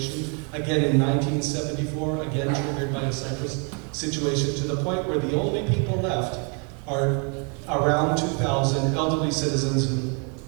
Again in 1974, again triggered by a Cyprus situation, to the point where the only people left are around 2,000 elderly citizens who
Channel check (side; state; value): left; quieter; 37.4 dB